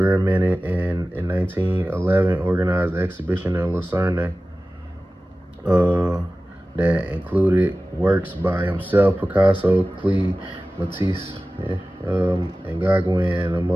and in 1911, organized an exhibition in Lucerne that included works by himself, Picasso, Klee, Matisse, and Gauguin,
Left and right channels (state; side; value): normal; both; correlation 0.96